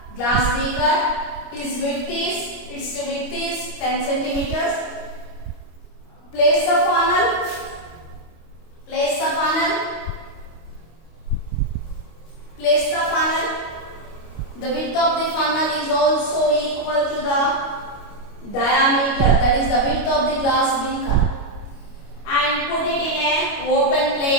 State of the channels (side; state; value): right; late; 25 ms